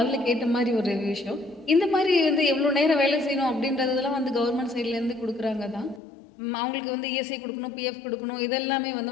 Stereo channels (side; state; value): right; drops out; at 6.0 s